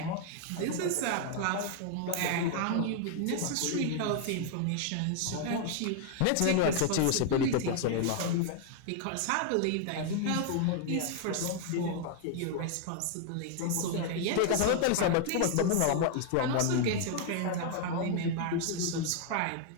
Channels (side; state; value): both; different; correlation 0.00